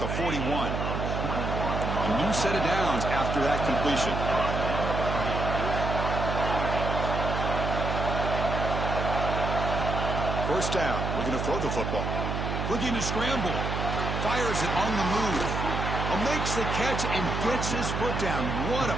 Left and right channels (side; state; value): right; noise; hum, 2 dB below the sound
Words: 41. A new set of downs after that completion. First down, we're going to throw the football. Looking to scramble. Fires it on the move. Makes the catch and gets his foot down. What a